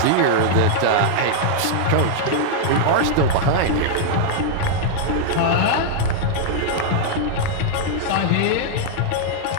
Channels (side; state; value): both; different; correlation -0.01